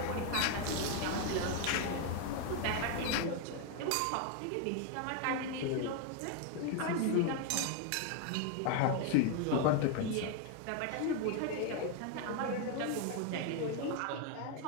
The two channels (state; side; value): different; both; correlation 0.01